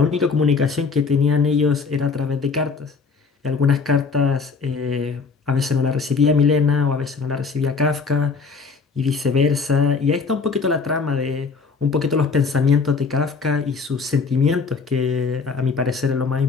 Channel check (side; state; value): right; quieter; 4.8 dB